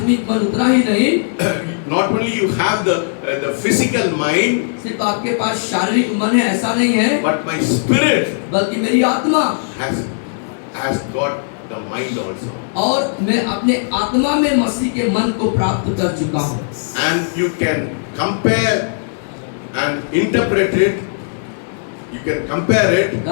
मन उतना ही नहीं, Not only you have the physical mind, सिर्फ आपके पास शारीरिक मन है ऐसा नहीं है, but my spirit बल्कि मेरी आत्मा has got the mind also. और मैं अपने आत्मा में मसीह के मन को प्राप्त कर चुका हूँ। And you can compare and interpret it. You can compare it.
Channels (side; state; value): right; silent; digital silence